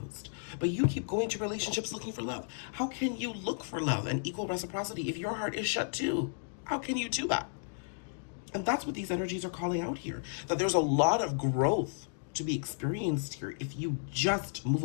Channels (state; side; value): silent; right; digital silence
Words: But you keep going to relationships looking for love. How can you look for love and equal reciprocity if your heart is shut too? How can you do that? And that's what these energies are calling out here. That there's a lot of growth to be experienced here if you just move